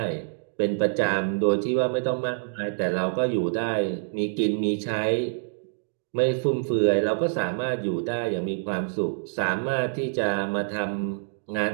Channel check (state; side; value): silent; left; digital silence